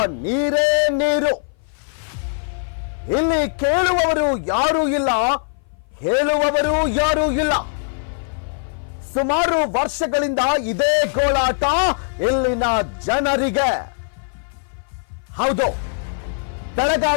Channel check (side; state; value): right; silent; 57 dB below the other